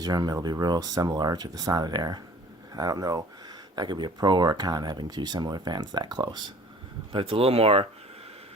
room, it'll be real similar to the Sonadair. I don't know, that could be a pro or a con having two similar fans that close. But it's a little more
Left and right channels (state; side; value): normal; both; correlation 0.48